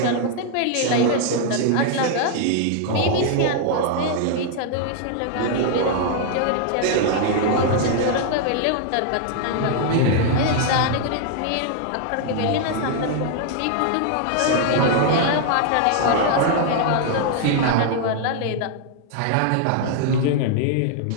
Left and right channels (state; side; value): different; both; correlation 0.00